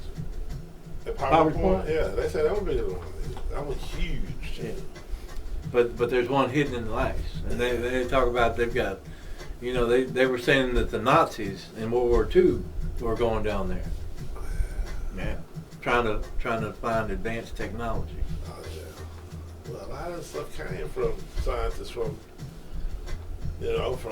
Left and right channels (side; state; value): both; identical; correlation 1.00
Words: At Power Point? Yeah, they say that one bigger than the one in Egypt. That one huge. Yeah. But there's one hidden in the ice, and they talk about they've got, you know, they were saying that the Nazis in World War II were going down there. Yeah, trying to find advanced technology. Oh yeah. Well, a lot of this stuff came from scientists from